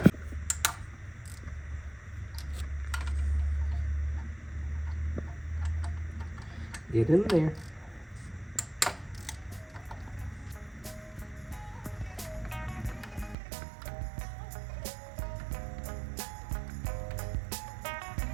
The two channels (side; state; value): left; drops out; at 13.4 s